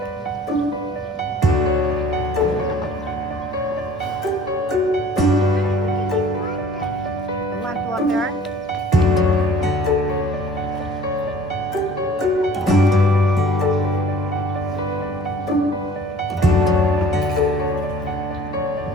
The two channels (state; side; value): normal; both; correlation 0.50